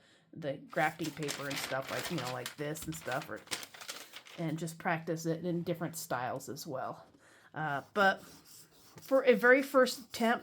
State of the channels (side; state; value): both; identical; correlation 1.00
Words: grafting paper and stuff, like, like this and stuff, and just practice it in different styles as well. But for a very first